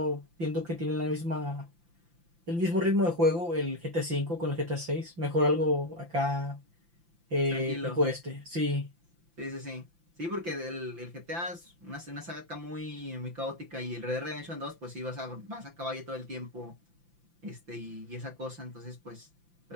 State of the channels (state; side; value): late; left; 5.9 ms